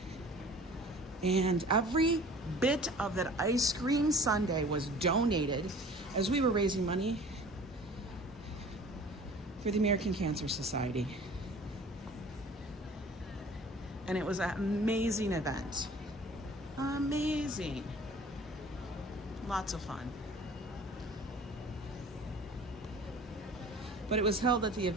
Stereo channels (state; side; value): normal; both; correlation 0.46